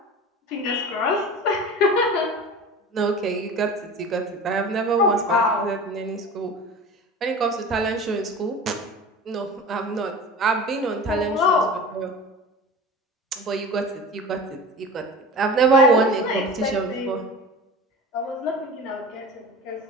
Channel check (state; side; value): normal; both; correlation 0.35